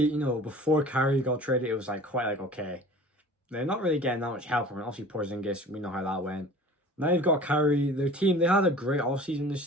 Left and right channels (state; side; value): normal; both; correlation 0.43